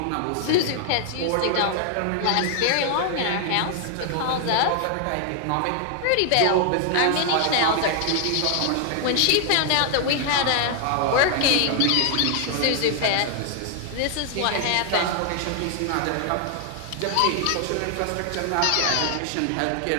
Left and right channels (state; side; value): different; both; correlation 0.00